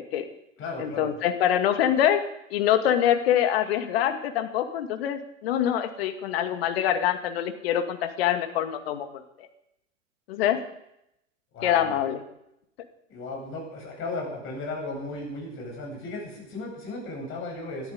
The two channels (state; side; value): quieter; right; 9.3 dB